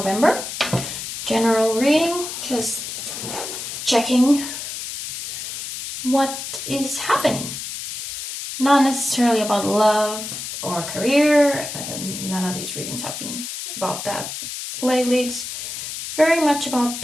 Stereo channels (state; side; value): noise; left; hiss, 7 dB below the sound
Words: General reading, just checking what is happening. Not necessarily about love or career. None of these readings have been about that lately. It's very much about